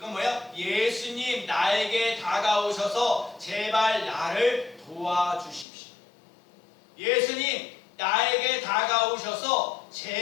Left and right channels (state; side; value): drops out; right; at 5.7 s